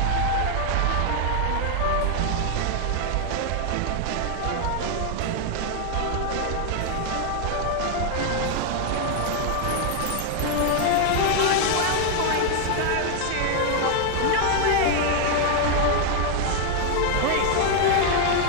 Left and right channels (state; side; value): different; both; correlation 0.00